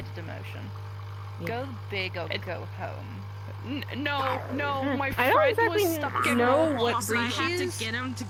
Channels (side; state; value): both; identical; correlation 1.00